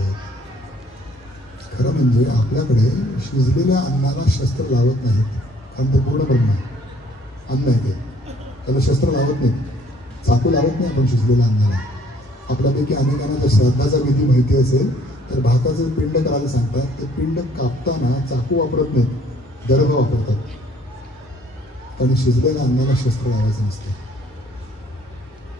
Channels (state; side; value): normal; both; correlation 0.60